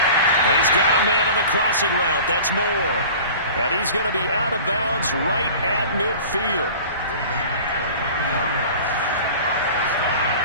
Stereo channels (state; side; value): inverted; both; correlation -0.41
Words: And he's got a man on the crossing route. That's Moore. And he's going to be out of bounds right at midfield.